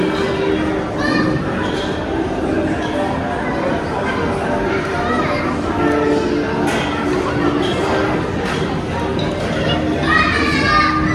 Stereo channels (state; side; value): identical; both; correlation 1.00